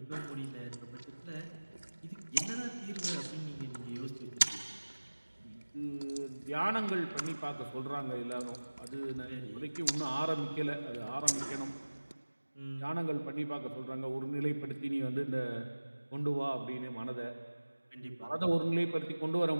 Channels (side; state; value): both; inverted; correlation -1.00